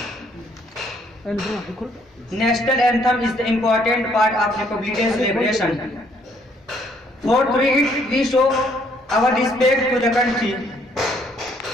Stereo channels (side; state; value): both; normal; correlation 0.66